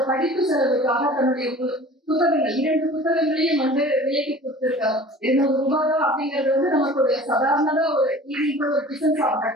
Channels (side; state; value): both; normal; correlation 0.43